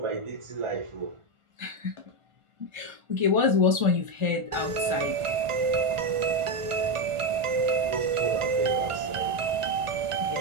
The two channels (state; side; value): late; left; 1.4 ms